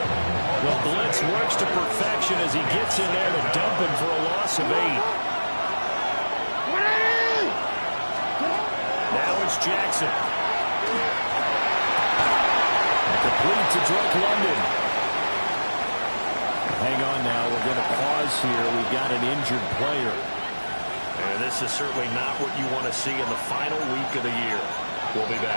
The blitz works to perfection as he gets in there to dump him for a loss of 8. Now it's Jackson. Complete to Drake London. Hang on now. We're going to pause here. We've got an injured player. And this is certainly not what you want to see in the final week of the year. We'll be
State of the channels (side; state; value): both; inverted; correlation -1.00